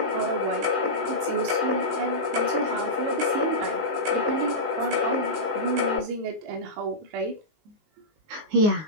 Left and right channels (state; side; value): late; left; 19 ms